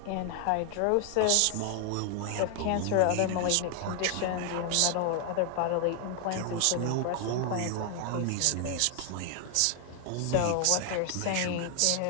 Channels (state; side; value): different; both; correlation 0.00